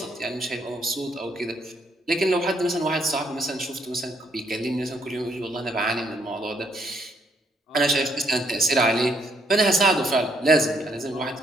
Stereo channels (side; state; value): both; normal; correlation 0.71